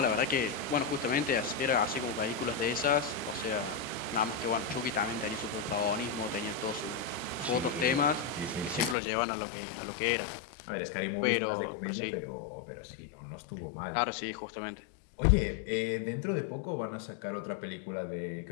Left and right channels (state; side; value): drops out; right; at 9.0 s